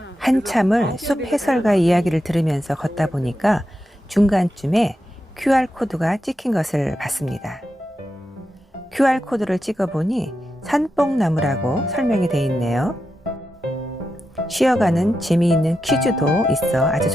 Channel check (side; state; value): both; normal; correlation 0.88